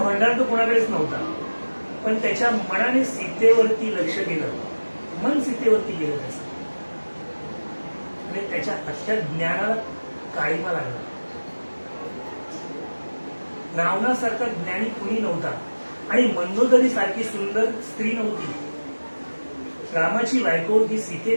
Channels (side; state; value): both; inverted; correlation -1.00